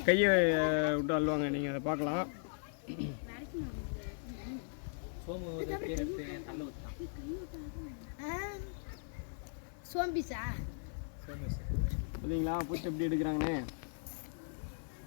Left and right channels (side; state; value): right; silent; 53 dB below the other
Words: கையை விட்டு அள்ளுவாங்க. நீங்கள் அதை பார்க்கலாம். பார்த்தீங்களா பூச்சி எப்படி எடுக்கிறாங்கன்னு?